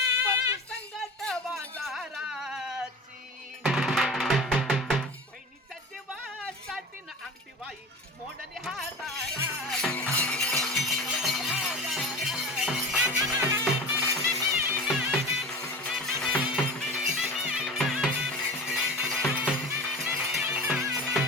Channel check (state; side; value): normal; both; correlation 0.33